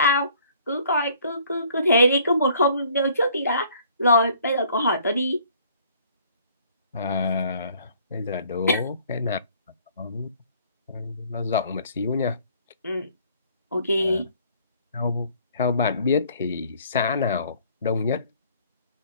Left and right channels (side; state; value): both; inverted; correlation -0.59